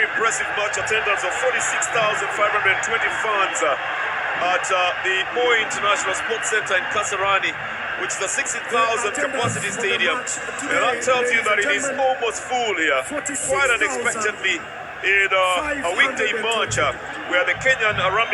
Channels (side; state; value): both; identical; correlation 1.00